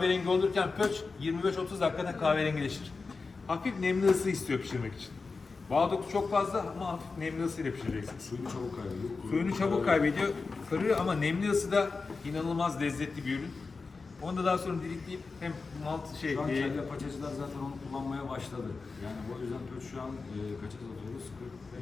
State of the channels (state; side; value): quieter; right; 4.3 dB